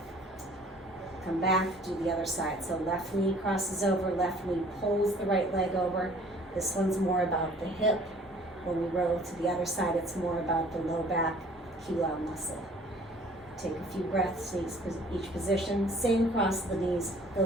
Come back, do the other side. So left knee crosses over, left knee pulls the right leg over. This one's more about the hip. When we roll to the other side, it's more about the low back QL muscle. Take a few breaths in each position. Same cross of the knees, go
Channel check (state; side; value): normal; both; correlation 0.54